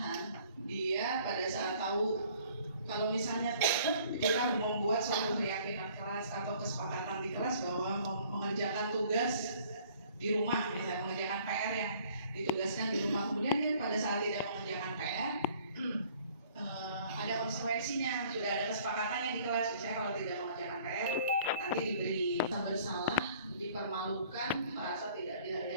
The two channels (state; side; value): inverted; both; correlation -0.56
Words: dia pada saat tahu, kalau misalnya kita membuat suatu keyakinan kelas atau kesepakatan di kelas bahwa mengerjakan tugas di rumah, misalnya mengerjakan PR yang ditugaskan di rumah, kemudian dia pada saat tidak mengerjakan PR, ada konsekuensinya, sudah ada kesepakatannya di kelas. Misalnya kalau tidak mengerjakan PR, nanti diberi bersalah, dipermalukan, merasa tidak